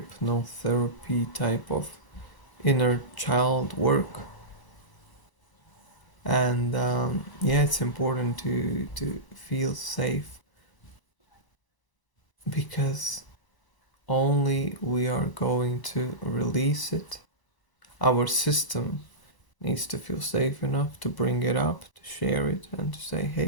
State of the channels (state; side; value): late; right; 1.0 ms